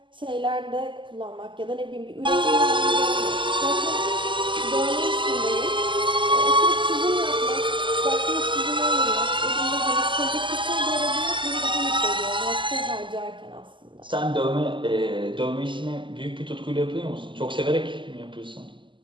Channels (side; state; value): left; late; 0.24 ms